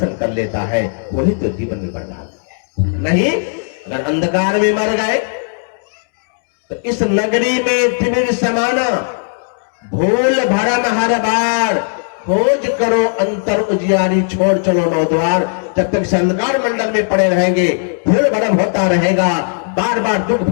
कर लेता है, वही तो जीवन में बड़भागी है। नहीं अगर अंधकार में मर गए तो इस नगरी में तिमिर समाना, भूल भरम हर बार, खोज करो अंतर उजियारी, छोड़ चलो नौ द्वार। जब तक इस अंधकार मंडल में पड़े रहेंगे, भूल भरम होता रहेगा, बार बार दुख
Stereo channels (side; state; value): right; silent; 69 dB below the other